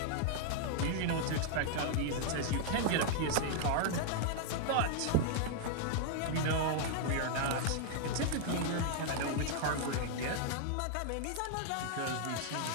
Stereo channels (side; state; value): both; different; correlation 0.00